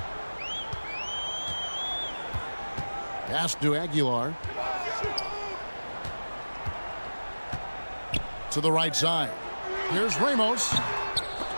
Pass to Aguilar. To the right side. Here's Ramos.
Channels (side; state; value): both; inverted; correlation -1.00